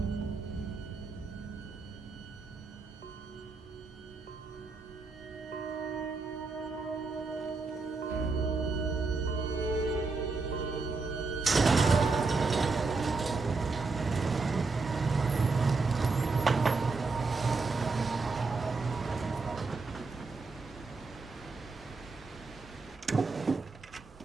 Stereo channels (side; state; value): left; quieter; 4.0 dB